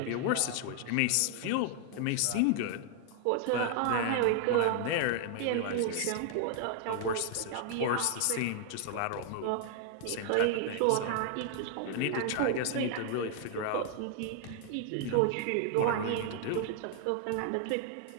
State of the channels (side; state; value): both; different; correlation 0.00